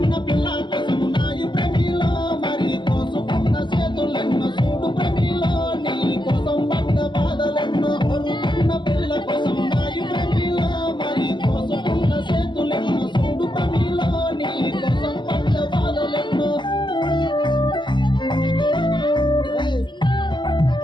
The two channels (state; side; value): late; right; 0.22 ms